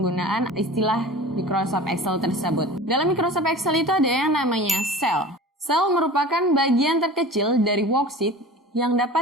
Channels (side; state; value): both; normal; correlation 0.38